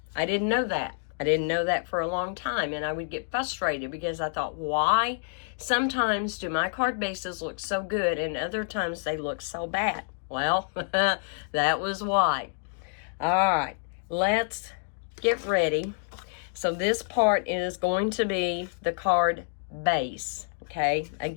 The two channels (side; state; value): right; silent; digital silence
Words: didn't know that. I didn't know that for a long time, and I would get frustrated because I thought, why sometimes do my card bases look so good and other times they look so bad? Well, that was why. All right, let's get ready. So this part is going to be the card base, okay?